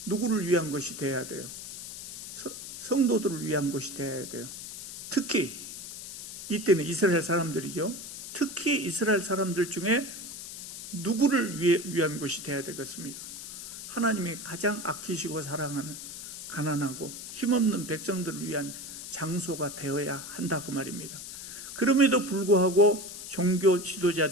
누구를 위한 것이 돼야 돼요? 성도들을 위한 것이 돼야 돼요. 특히 이때는 이스라엘 사람들이죠. 특히 이스라엘 사람들 중에 누구를 위한 것이 돼야 되겠습니까? 하나님이 가장 아끼시고 사랑하는 가난하고 힘없는 백성들을 위한 장소가 되어야 한다 그 말입니다. 그럼에도 불구하고 종교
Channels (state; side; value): noise; left; hiss, 10 dB below the sound